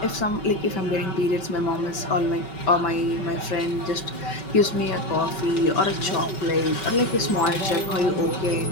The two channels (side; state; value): right; late; 5.2 ms